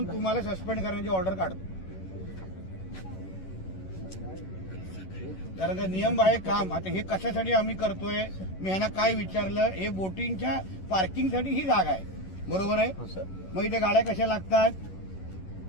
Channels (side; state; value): right; late; 11 ms